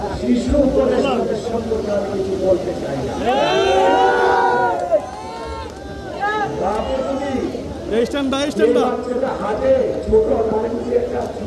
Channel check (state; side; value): identical; both; correlation 1.00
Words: শিশু উপদেষ্টাদের সম্পর্কে আমি কিছু বলতে চাই না। হাতে ছোট একটা